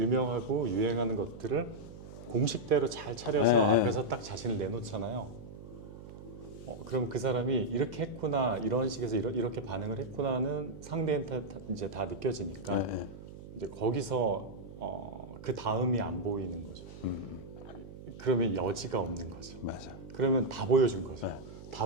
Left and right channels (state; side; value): noise; right; hum, 14 dB below the sound